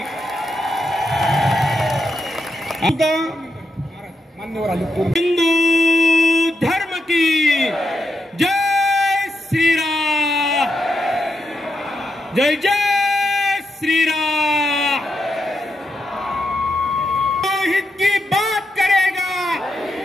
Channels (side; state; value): both; normal; correlation 0.84